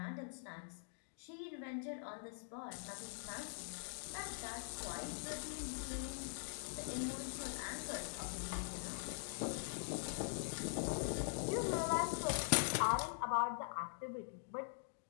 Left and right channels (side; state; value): right; silent; digital silence